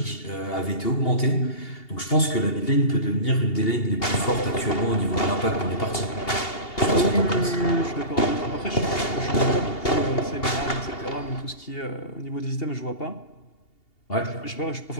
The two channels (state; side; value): late; right; 2.8 ms